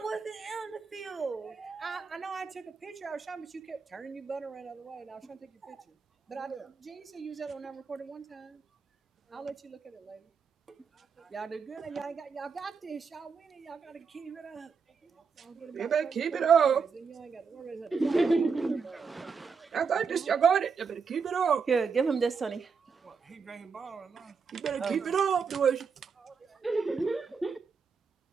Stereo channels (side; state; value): left; quieter; 5.5 dB